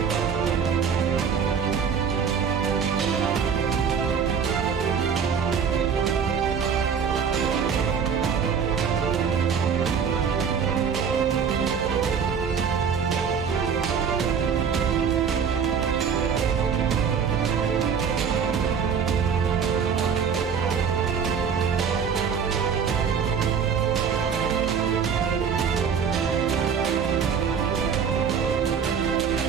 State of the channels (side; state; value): left; quieter; 6.7 dB